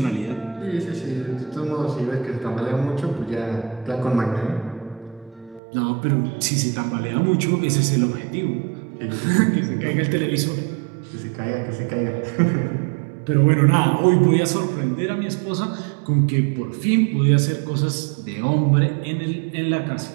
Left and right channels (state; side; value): drops out; left; at 5.6 s